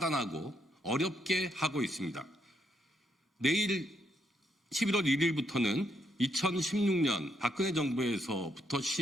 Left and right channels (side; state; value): both; normal; correlation 0.76